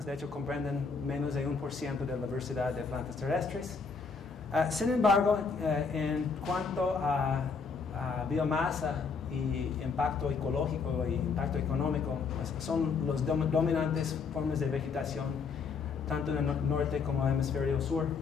De hecho, comprenden menos de 1% de la diversidad de plantas terrestres. Sin embargo, en cuanto a biomasa y impacto ecológico y impacto económico, pues son los dominantes formas de vegetación, tanto en el norte como en el hemisferio sur.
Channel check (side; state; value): right; quieter; 5.1 dB